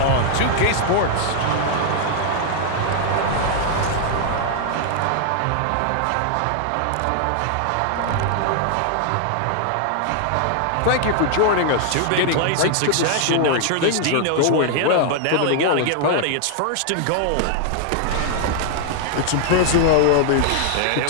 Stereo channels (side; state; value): both; different; correlation 0.00